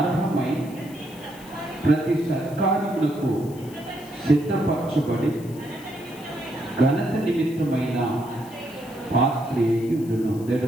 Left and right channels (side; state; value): left; noise; hiss, 21 dB below the sound